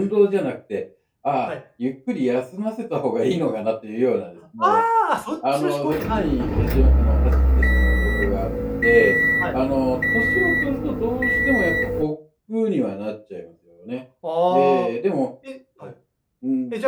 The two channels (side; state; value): both; identical; correlation 1.00